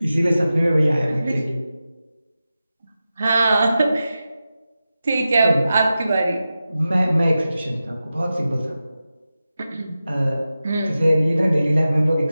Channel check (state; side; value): inverted; both; correlation -0.93